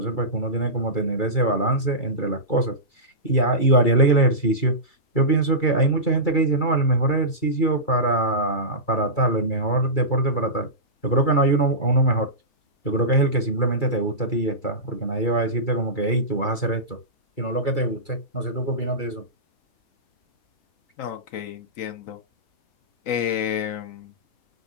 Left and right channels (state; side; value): late; right; 2.3 ms